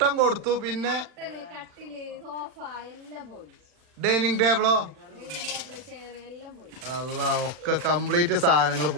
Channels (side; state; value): left; late; 40 ms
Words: കൊടുത്തു, പിന്നെ കട്ടില് സോഫ എല്ലാം പോയി. ഡൈനിങ് ടേബിളോ അല്ല ഒക്കെ കംപ്ലീറ്റ് സാധനങ്ങൾ